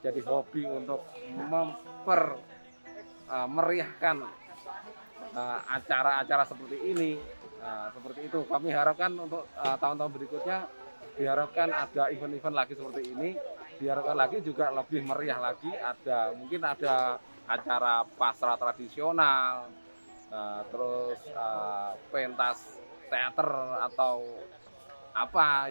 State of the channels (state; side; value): inverted; both; correlation -1.00